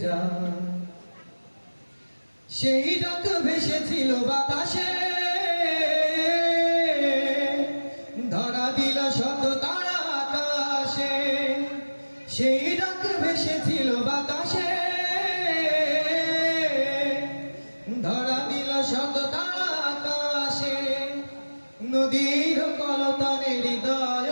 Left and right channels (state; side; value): inverted; both; correlation -1.00